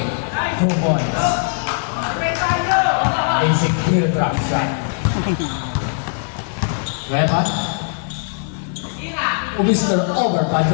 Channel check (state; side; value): silent; right; 66 dB below the other